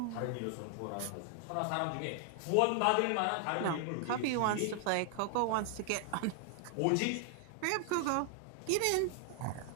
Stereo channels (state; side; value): different; both; correlation 0.00